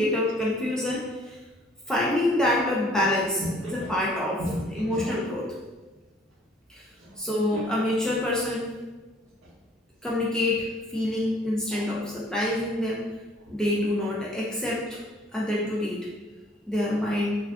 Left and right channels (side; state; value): both; normal; correlation 0.57